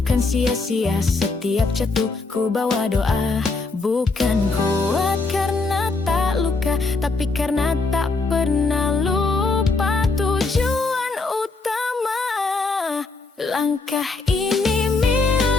sia-sia, setiap jatuh ku bawa doa. Bukan kuat karena tak luka, tapi karena tak pernah lupa tujuan utama. Langkah ini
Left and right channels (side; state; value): right; quieter; 3.8 dB